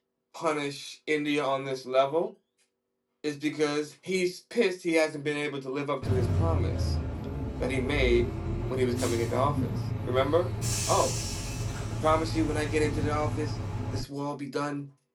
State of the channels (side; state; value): both; identical; correlation 1.00